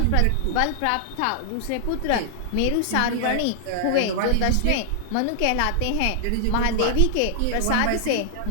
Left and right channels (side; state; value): both; different; correlation -0.01